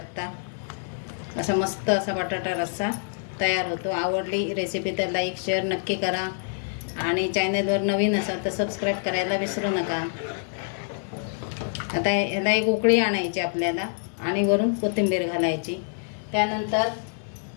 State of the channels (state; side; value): silent; right; digital silence